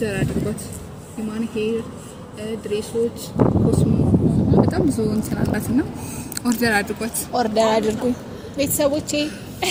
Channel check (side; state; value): both; identical; correlation 1.00